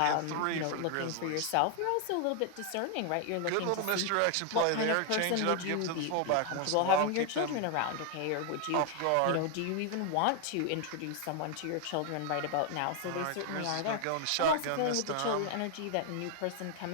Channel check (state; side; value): different; both; correlation 0.00